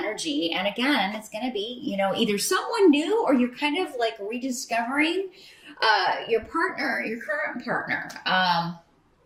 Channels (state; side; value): identical; both; correlation 1.00